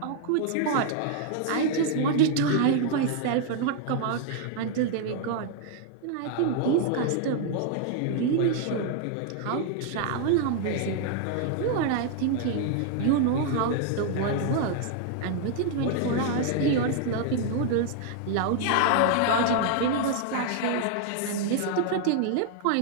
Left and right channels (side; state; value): both; different; correlation 0.00